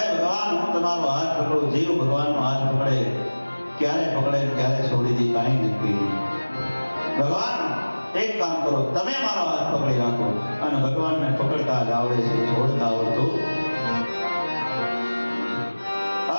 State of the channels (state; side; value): inverted; both; correlation -1.00